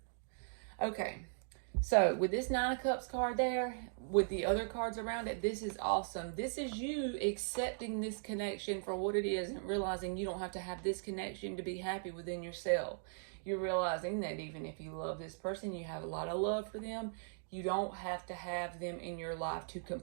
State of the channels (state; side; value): silent; left; digital silence